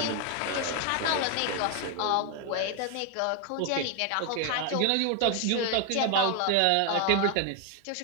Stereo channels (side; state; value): both; different; correlation 0.01